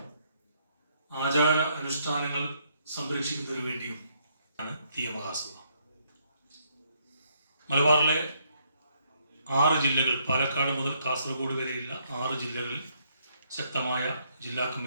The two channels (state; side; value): inverted; both; correlation -0.72